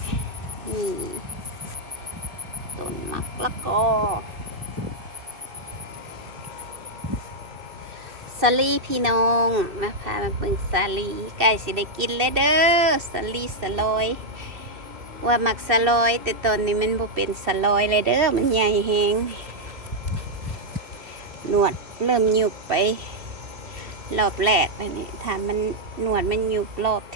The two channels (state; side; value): late; left; 2.7 ms